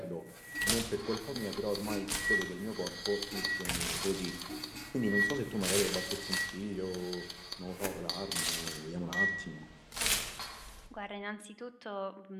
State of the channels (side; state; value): both; identical; correlation 1.00